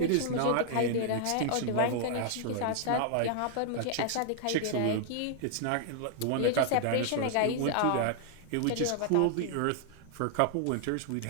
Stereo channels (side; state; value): both; different; correlation 0.00